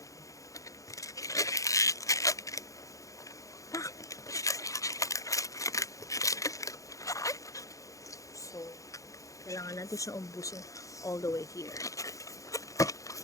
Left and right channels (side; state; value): right; late; 0.16 ms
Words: So, kailangan natin siya umbusin all the way here.